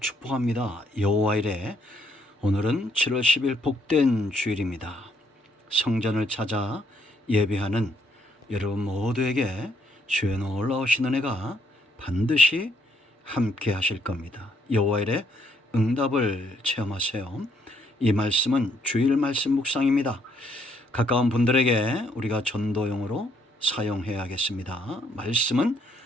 여호와 이레. 오늘은 7월 10일 복된 주일입니다. 성전을 찾아 예배하는 여러분 모두에게 주의 놀라우신 은혜가 반드시 함께 하실 겁니다. 여호와 이레 응답을 체험하세요. 이 말씀은 주일 말씀 묵상입니다. 가까운 분들에게 우리가 전도용으로 사용해야겠습니다. 말씀은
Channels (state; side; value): normal; both; correlation 0.69